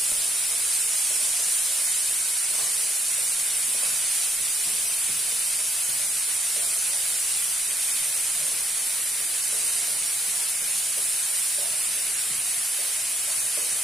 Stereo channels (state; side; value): normal; both; correlation 0.73